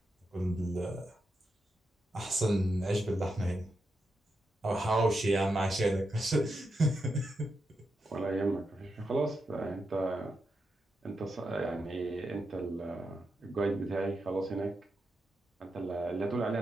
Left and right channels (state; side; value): normal; both; correlation 0.86